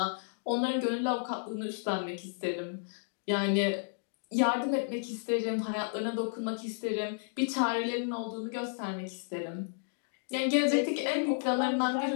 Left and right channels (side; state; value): right; silent; digital silence